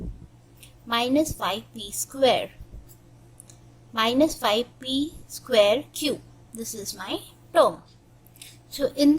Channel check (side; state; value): both; identical; correlation 1.00